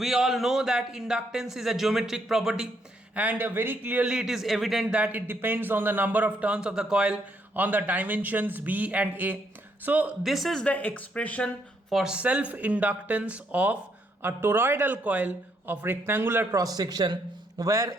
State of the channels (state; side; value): normal; both; correlation 0.73